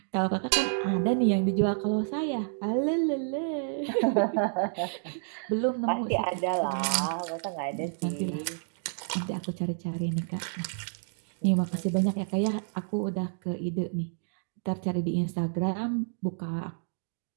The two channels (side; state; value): left; silent; digital silence